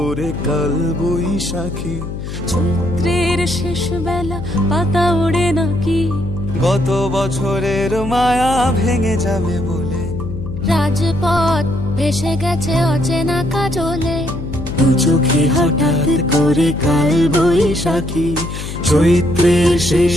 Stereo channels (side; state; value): left; noise; hum, 8 dB below the sound